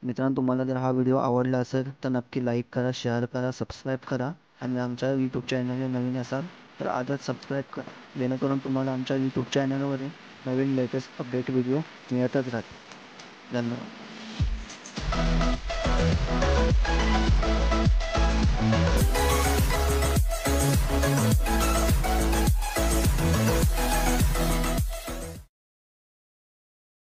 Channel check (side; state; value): both; identical; correlation 1.00